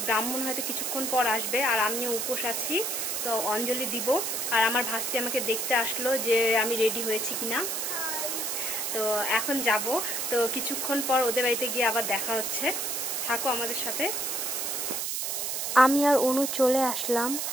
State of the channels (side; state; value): right; noise; hiss, 1 dB below the sound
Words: ব্রাহ্মণ হয়তো কিছুক্ষণ পর আসবে, আর আমিও উপোস আছি, তো অঞ্জলি দিব। আর আমার ভাস্তি আমাকে দেখতে আসলো যে আমি রেডি হয়েছি কিনা। তো এখন যাব, তো কিছুক্ষণ পর ওদের বাড়িতে গিয়ে আবার দেখা হচ্ছে। থাকো আমাদের সাথে। আমি আর অনু চলে আসলাম,